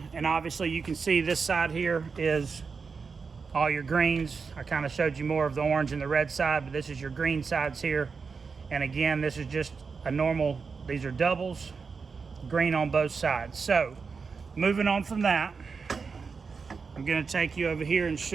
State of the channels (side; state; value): left; quieter; 5.1 dB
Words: and obviously you can see this side here is all your greens. I kind of showed you more of the orange and the red side, but this is your green sides here. And again, this is just a normal, these are doubles, green on both sides. So moving on from that, I'm going to take you over here and